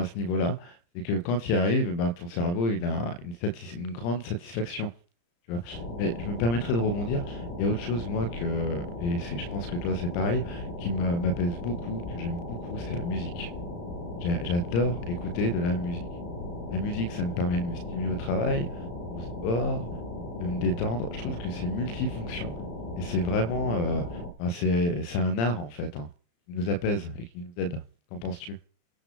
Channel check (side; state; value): right; late; 35 ms